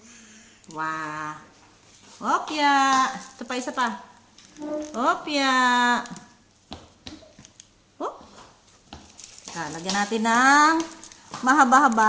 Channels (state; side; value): identical; both; correlation 1.00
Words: Wow. Opya. Ito pa, isa pa. Opya. Oh. Teka, lagyan natin ng